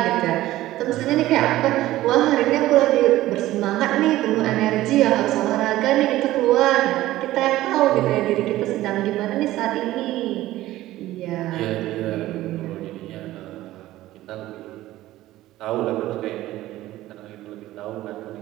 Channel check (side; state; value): left; quieter; 15.7 dB